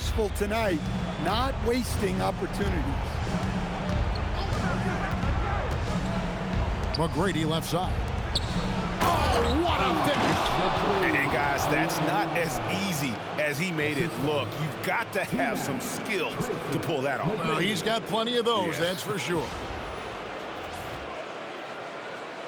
tonight, not wasting opportunities. McGrady left side. Oh, what a finish. And guys, that's not as easy as he made it look. You've got to have some skills to pull that off. Well, he's got plenty of those, that's for sure.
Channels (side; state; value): both; identical; correlation 1.00